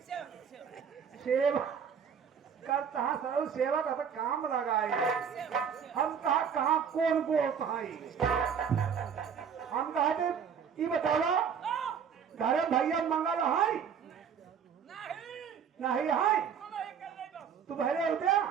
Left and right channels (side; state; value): left; quieter; 7.3 dB